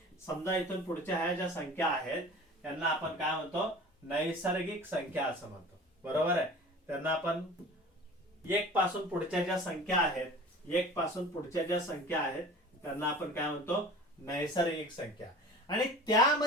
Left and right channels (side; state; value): both; normal; correlation 0.40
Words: समजा इथून पुढच्या ह्या ज्या संख्या आहेत त्यांना आपण काय म्हणतो? नैसर्गिक संख्या असं म्हणतो। बरोबर आहे? त्यांना आपण 1 पासून पुढच्या ज्या संख्या आहेत, 1 पासून पुढच्या ज्या संख्या आहेत त्यांना आपण काय म्हणतो? नैसर्गिक संख्या। आणि